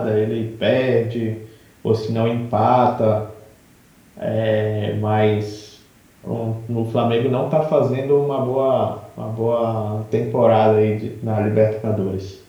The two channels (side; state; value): both; identical; correlation 1.00